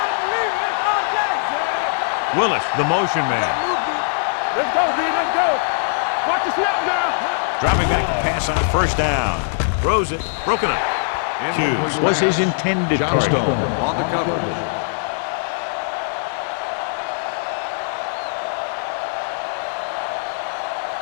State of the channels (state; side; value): silent; right; 65 dB below the other